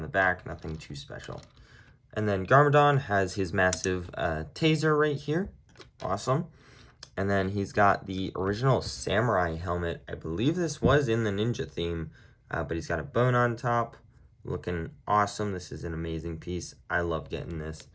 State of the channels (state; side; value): identical; both; correlation 1.00